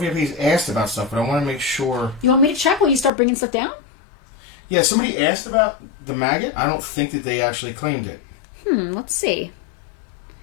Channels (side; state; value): right; drops out; at 3.1 s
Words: asked about stuff, but I want to make sure. You want me to check while you start bringing stuff down? Yeah, somebody asked about the maggot. I don't think that they actually claimed it. Let's see.